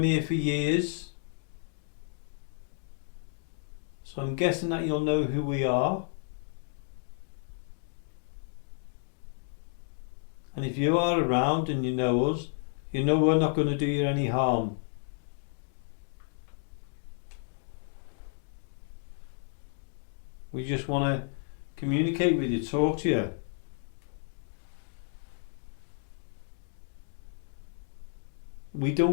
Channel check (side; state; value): right; silent; 57 dB below the other